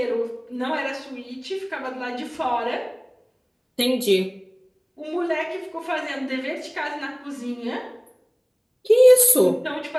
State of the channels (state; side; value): identical; both; correlation 1.00